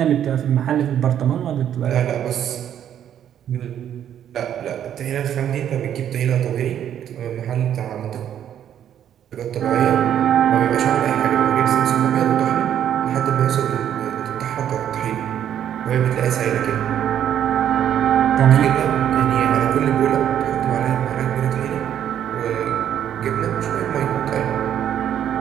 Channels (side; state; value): left; quieter; 10.0 dB